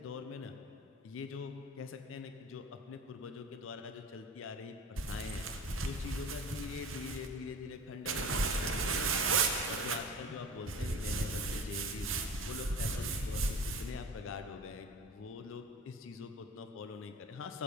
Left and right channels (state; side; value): normal; both; correlation 0.36